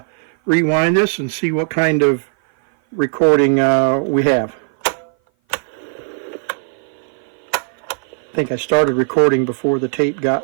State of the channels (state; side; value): silent; left; 57 dB below the other